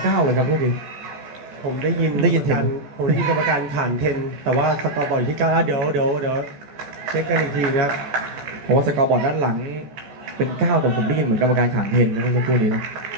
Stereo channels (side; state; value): left; late; 14 ms